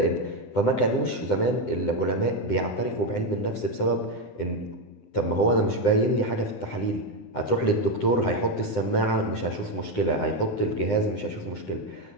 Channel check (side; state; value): right; late; 9.9 ms